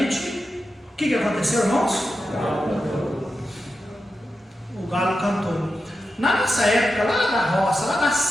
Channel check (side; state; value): both; normal; correlation 0.90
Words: o que aconteceu, irmãos? O galo cantou. Na nossa época, lá da roça, lá da